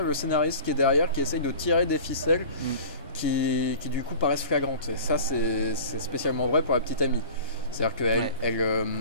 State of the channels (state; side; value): inverted; both; correlation -0.40